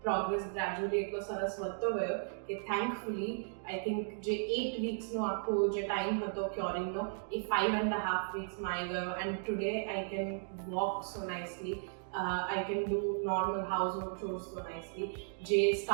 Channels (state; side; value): silent; left; digital silence